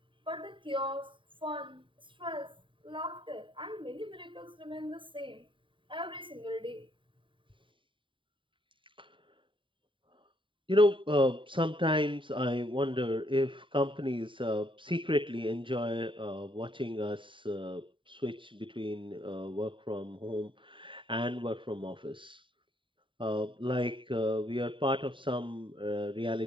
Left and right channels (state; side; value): late; left; 0.24 ms